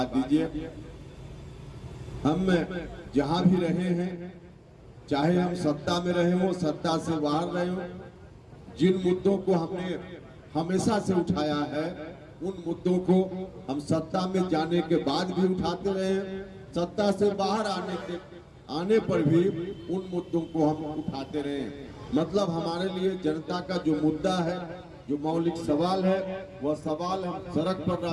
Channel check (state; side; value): identical; both; correlation 1.00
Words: दीजिए। हम जहां भी रहे हैं, चाहे हम सत्ता में रहे हो, सत्ता से बाहर रहे हो, जिन मुद्दों को हमने हमेशा से उठाया है, उन मुद्दों को हम सत्ता में जाने के बाद भी उठाते रहे हैं, सत्ता से बाहर आने पर भी उन मुद्दों को हम उठाते रहे हैं। मतलब हमारे लिए जनता का जो मुद्दा है, जो मौलिक सवाल है, वह सवाल हम सड़क पर